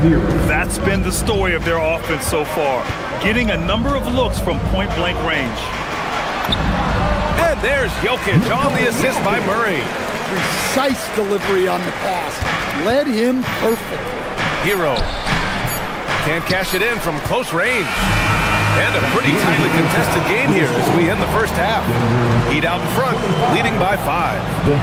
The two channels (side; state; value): both; identical; correlation 1.00